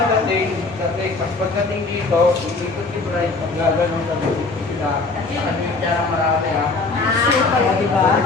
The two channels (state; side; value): quieter; right; 3.7 dB